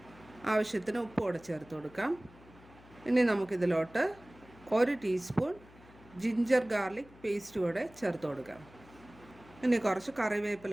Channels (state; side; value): noise; left; hum, 23 dB below the sound